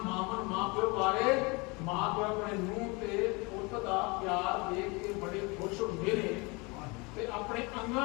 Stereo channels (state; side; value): quieter; right; 27.6 dB